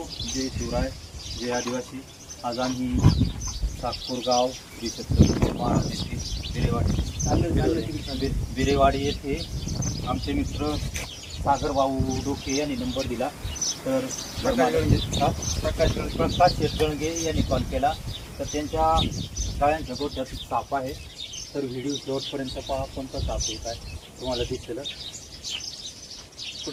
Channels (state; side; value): identical; both; correlation 1.00